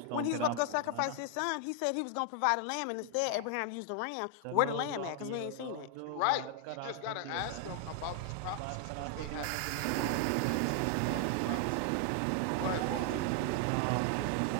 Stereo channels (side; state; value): both; different; correlation 0.00